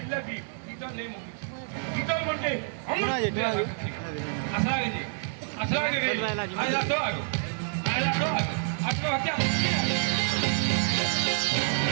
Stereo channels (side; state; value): left; silent; digital silence